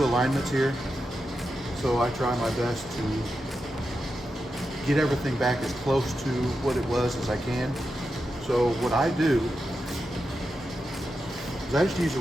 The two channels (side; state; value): both; normal; correlation 0.88